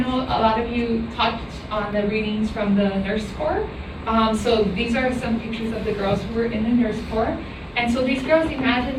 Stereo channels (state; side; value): identical; both; correlation 1.00